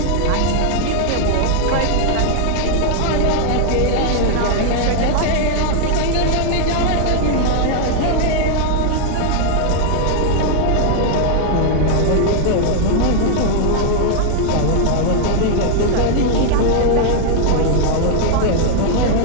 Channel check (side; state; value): both; different; correlation 0.00